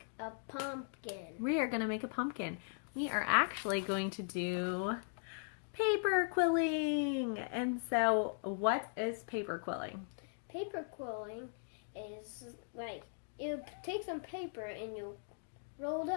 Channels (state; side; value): silent; right; digital silence